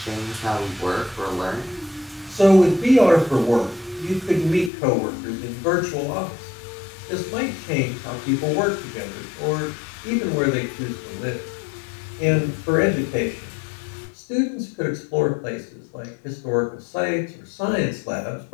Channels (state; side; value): drops out; right; at 4.7 s